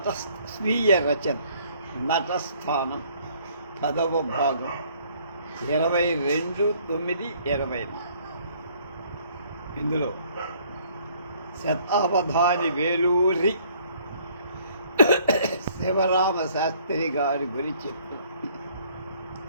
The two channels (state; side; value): inverted; both; correlation -0.60